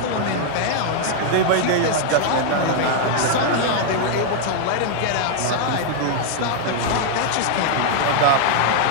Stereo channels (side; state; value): both; different; correlation 0.00